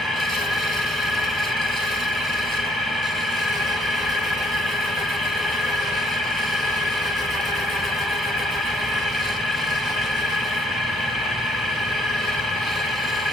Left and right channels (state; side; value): normal; both; correlation 0.65